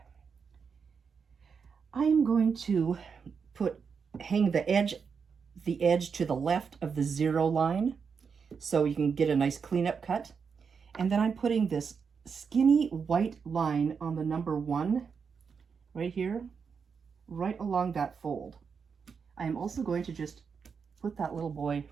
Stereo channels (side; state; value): left; quieter; 6.0 dB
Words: I am going to hang the edge to the left of the 0 line so you can get a nice cleanup cut. And then I'm putting this skinny white line on the number 1 right here, right along that fold. I am also going to just put that little boy